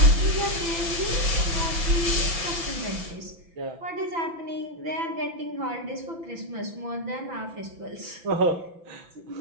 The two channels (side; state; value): left; late; 6.0 ms